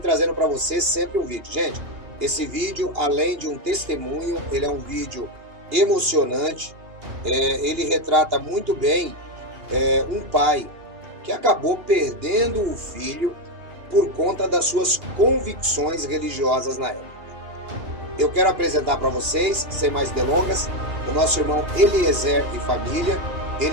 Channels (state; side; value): late; left; 2.8 ms